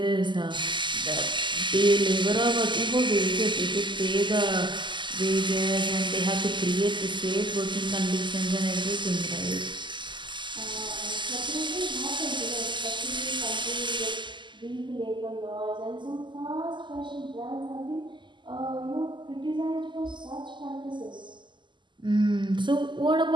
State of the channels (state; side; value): late; left; 0.22 ms